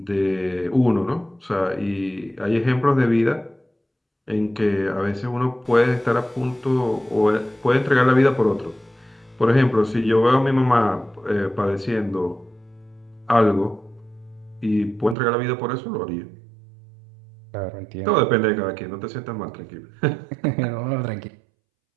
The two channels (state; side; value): drops out; left; at 15.2 s